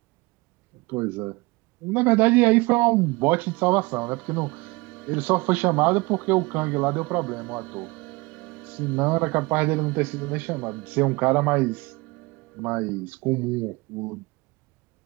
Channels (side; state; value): left; quieter; 24.1 dB